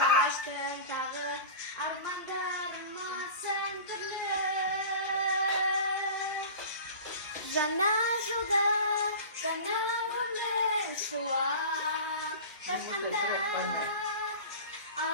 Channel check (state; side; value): inverted; both; correlation -0.35